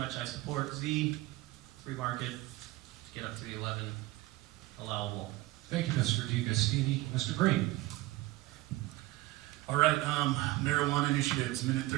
I support Z, free market, to get up to the 11 allowable. Thank you, Mr. DiGustini. Mr. Green. All right, marijuana initiatives, minute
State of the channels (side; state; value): left; quieter; 18.8 dB